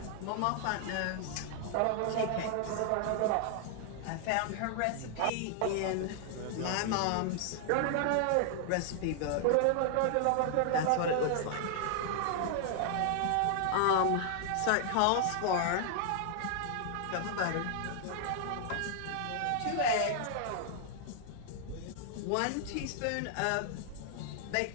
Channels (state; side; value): different; both; correlation 0.00